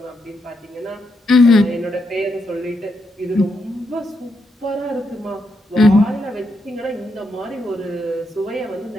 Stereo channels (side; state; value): both; normal; correlation 0.81